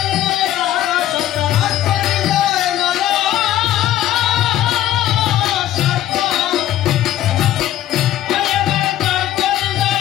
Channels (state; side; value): quieter; right; 12.9 dB